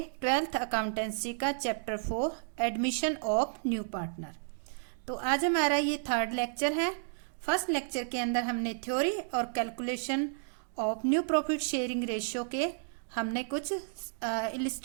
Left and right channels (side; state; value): left; silent; digital silence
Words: 12th अकाउंटेंसी का chapter 4 admission of new partner. तो आज हमारा ये थर्ड लेक्चर है। फर्स्ट लेक्चर के अंदर हमने थ्योरी और calculation of new profit sharing ratio के हमने कुछ